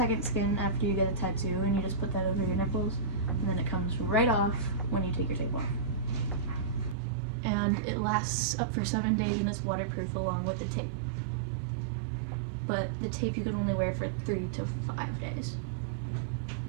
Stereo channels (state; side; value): drops out; left; at 7.0 s